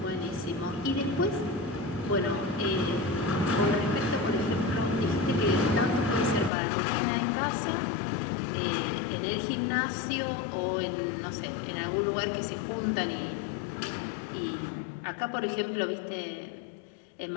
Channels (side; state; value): right; drops out; at 6.5 s